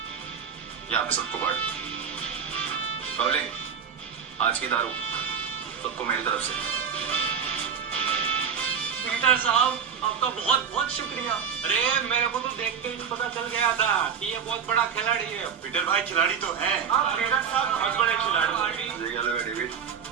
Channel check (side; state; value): left; quieter; 7.2 dB